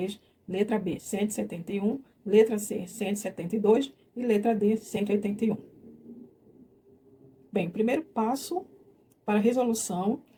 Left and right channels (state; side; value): identical; both; correlation 1.00